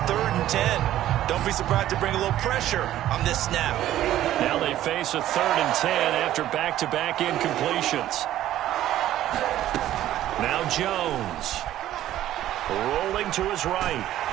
3rd and 10. Don't be surprised to bring a little pressure on this snap. Now they face a 3rd and 10 after back-to-back incompletions. Now Jones. Rolling to his right.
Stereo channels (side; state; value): left; quieter; 13.1 dB